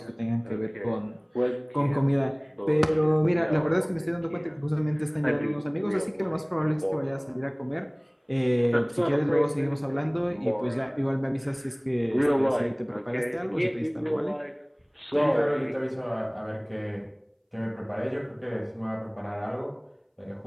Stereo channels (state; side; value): identical; both; correlation 1.00